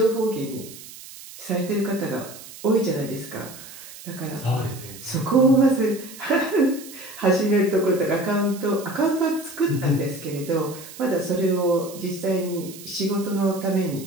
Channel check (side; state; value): right; noise; hiss, 16 dB below the sound